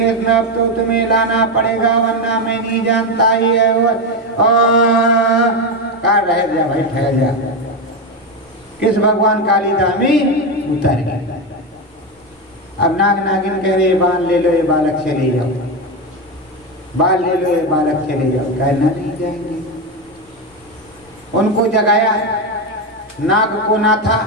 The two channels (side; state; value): both; normal; correlation 0.12